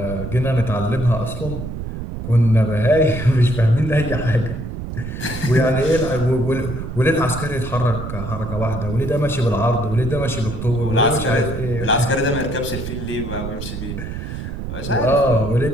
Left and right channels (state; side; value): noise; right; rumble, 7 dB below the sound